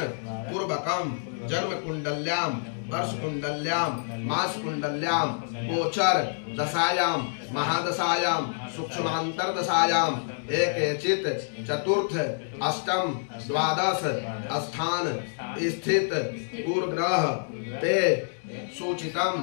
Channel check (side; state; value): right; silent; digital silence